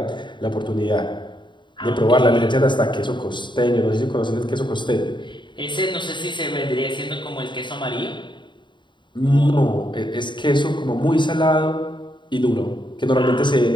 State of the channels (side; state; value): right; late; 0.23 ms